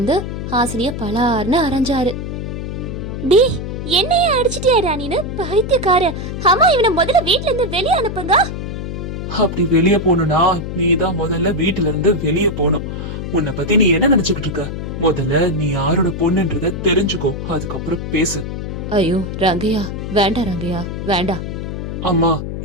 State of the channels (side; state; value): left; noise; hum, 6 dB below the sound